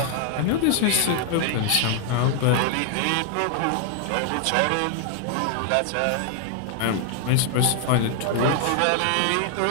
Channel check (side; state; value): both; different; correlation 0.00